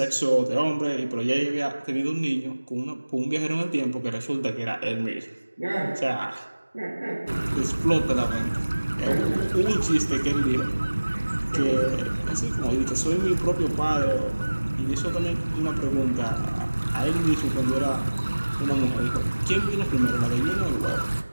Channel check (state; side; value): inverted; both; correlation -1.00